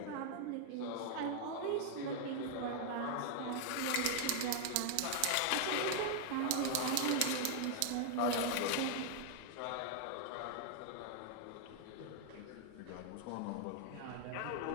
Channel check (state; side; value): different; both; correlation 0.00